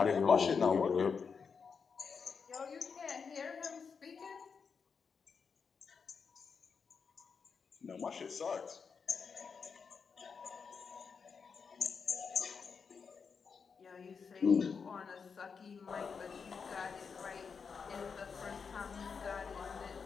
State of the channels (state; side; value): quieter; right; 5.8 dB